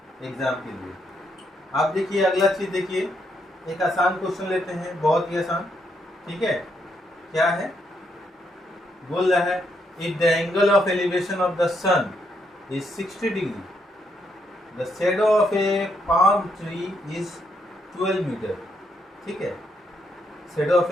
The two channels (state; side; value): normal; both; correlation 0.77